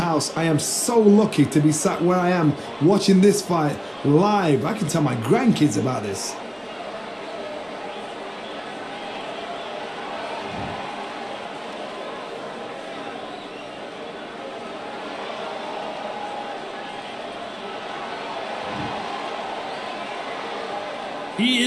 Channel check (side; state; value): both; identical; correlation 1.00